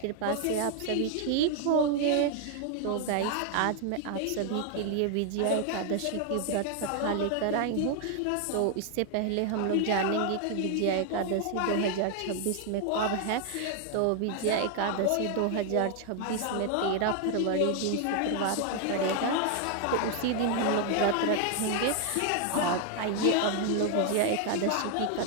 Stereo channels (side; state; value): both; different; correlation 0.00